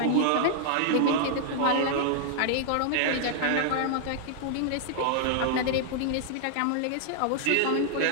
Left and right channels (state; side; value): different; both; correlation -0.01